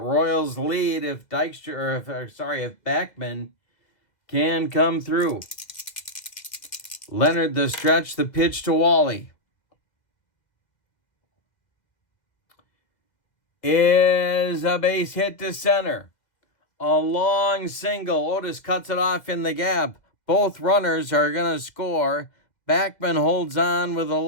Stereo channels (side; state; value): right; late; 2.0 ms